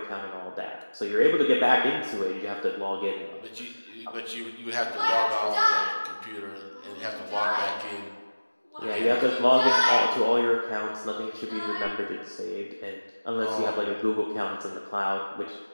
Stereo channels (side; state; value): both; inverted; correlation -1.00